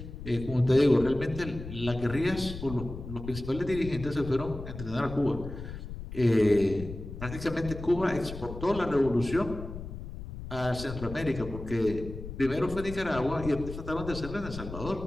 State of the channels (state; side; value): noise; left; rumble, 10 dB below the sound